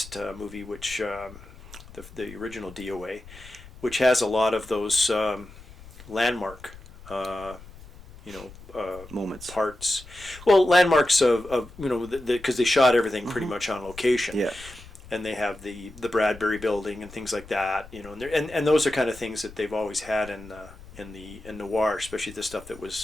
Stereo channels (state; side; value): noise; left; rumble, 19 dB below the sound